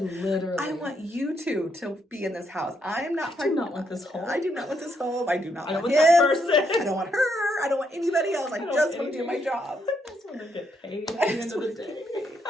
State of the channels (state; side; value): normal; both; correlation 0.76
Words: want you two to be in this house. I am not. I do not want this home. I do not want this home. I do not want him. that person. I don't want her. I don't want anybody else. I just want to do my job. I just want to get paid at the end of the day.